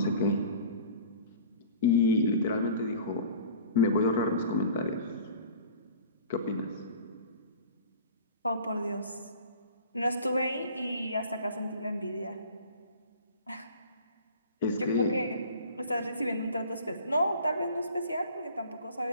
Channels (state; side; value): inverted; both; correlation -0.45